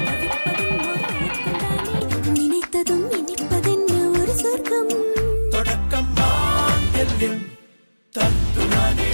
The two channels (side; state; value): both; inverted; correlation -1.00